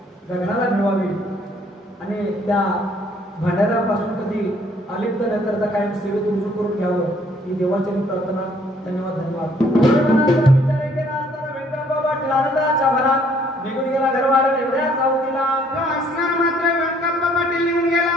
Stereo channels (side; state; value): both; normal; correlation 0.63